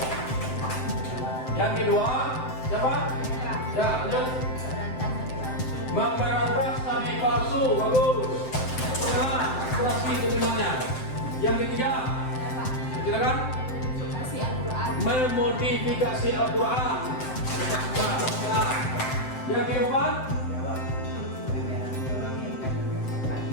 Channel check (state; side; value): late; right; 7.7 ms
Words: yang kedua, siapa? Ya, lanjut. Memberantas nabi palsu. Bagus. Nah, kurasi keterimanya. Yang ketiga, silakan. Memodifikasi Al-Quran. Nah, yang keempat,